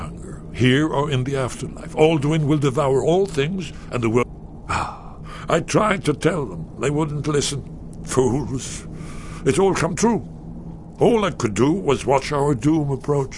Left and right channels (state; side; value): identical; both; correlation 1.00